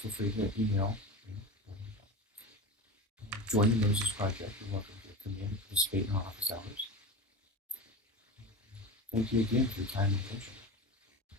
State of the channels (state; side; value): normal; both; correlation 0.27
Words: free to email. Join the Moses Project. You're welcome to come in and participate in our office hours. Thank you again for your time and attention.